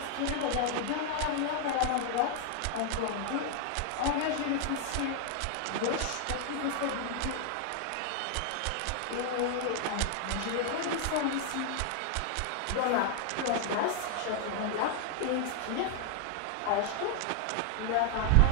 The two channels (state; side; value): different; both; correlation 0.00